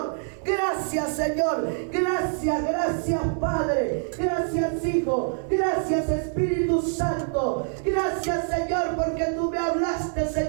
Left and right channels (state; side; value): silent; left; digital silence